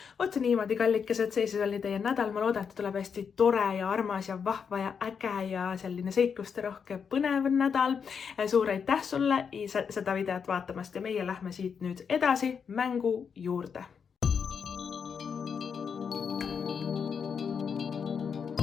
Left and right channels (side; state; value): right; quieter; 6.6 dB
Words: Oot niimoodi, kallikesed, see siis oli teie nädal. Ma loodan, et tuleb hästi tore ja armas ja vahva ja äge ja selline seikluste rohke põnev nädal. Suur aitäh sulle seda videot vaatamast ja meie lähme siit nüüd edasi mängu juurde.